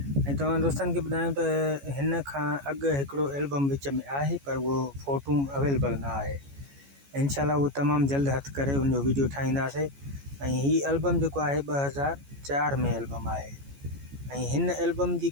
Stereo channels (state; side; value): late; left; 14 ms